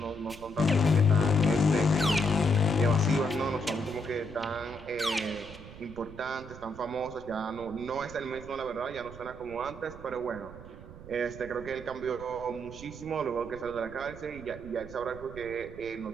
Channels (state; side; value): noise; right; rumble, 15 dB below the sound